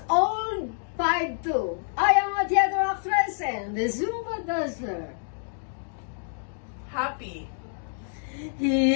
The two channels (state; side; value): silent; right; digital silence